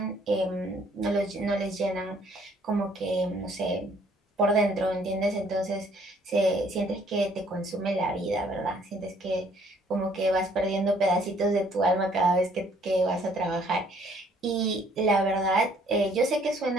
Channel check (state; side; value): normal; both; correlation 0.62